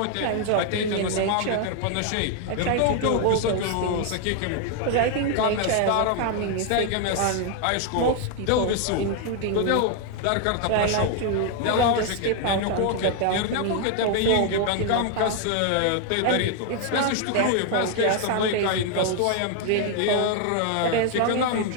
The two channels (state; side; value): different; both; correlation 0.00